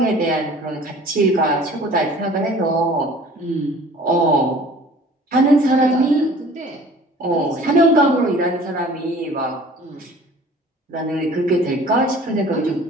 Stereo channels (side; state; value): both; normal; correlation 0.48